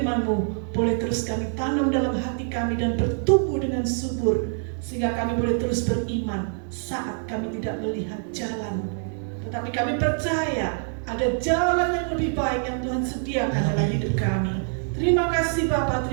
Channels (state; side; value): silent; left; 62 dB below the other